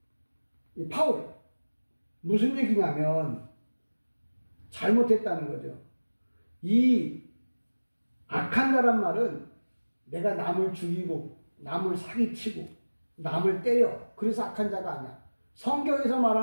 이 파울. 무슨 얘기냐면 잘못했다는 거죠. 이 악한 자란 말은 내가 남을 죽이고 남을 사기치고 남을 때려, 그래서 악한 자가 아니야. 성경에서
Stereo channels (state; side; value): inverted; both; correlation -1.00